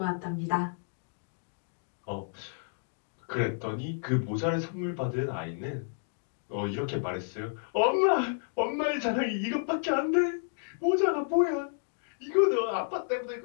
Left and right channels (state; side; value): silent; right; digital silence